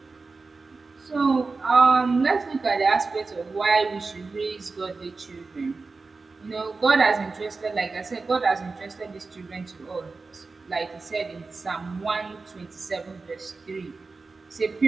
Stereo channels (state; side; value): quieter; left; 4.0 dB